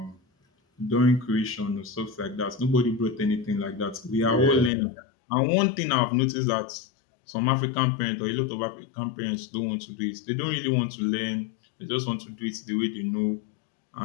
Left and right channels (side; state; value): right; drops out; at 4.7 s